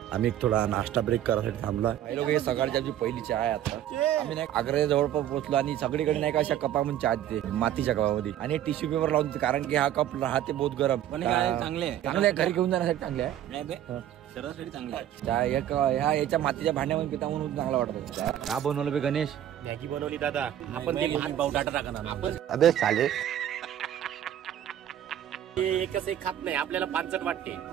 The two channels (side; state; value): left; quieter; 11.3 dB